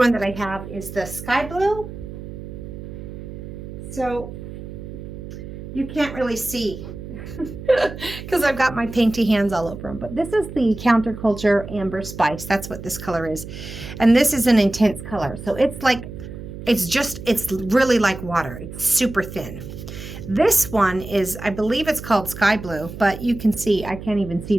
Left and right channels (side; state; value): right; noise; hum, 11 dB below the sound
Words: that I have is the Sky Blue. So you can't really see because I've got my painty hands all over them, but this is the Counterculture Amber Spice. That's what this color is. And this is an intense color. So it's like, it's really like water. It's super thin. This one is, I believe it's called Sky Blue, but you can see, I can't even see